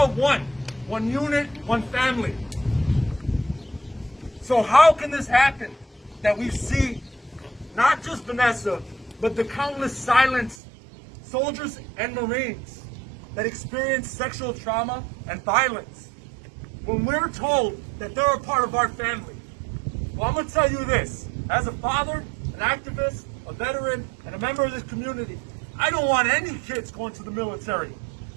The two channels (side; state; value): left; drops out; at 10.6 s